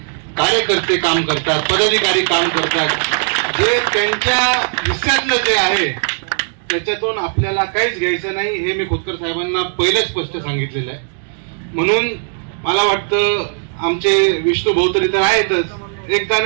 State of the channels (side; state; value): left; silent; digital silence